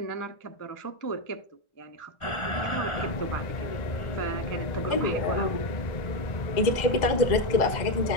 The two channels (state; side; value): late; right; 1.4 ms